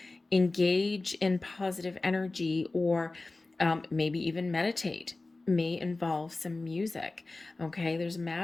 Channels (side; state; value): right; quieter; 3.2 dB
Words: engage in positive energy, or maybe even meditate, may involve some music, okay? There's